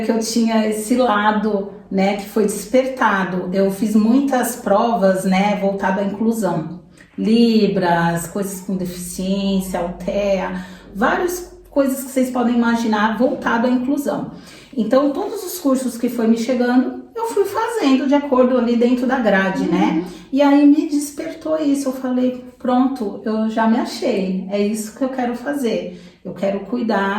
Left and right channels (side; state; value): both; identical; correlation 1.00